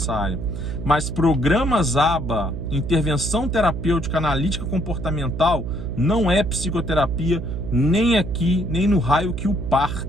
Mas programas ABA, intervenção terapêutica analítica comportamental, não é psicoterapia, nem aqui, nem no raio que o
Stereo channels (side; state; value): right; noise; hum, 5 dB below the sound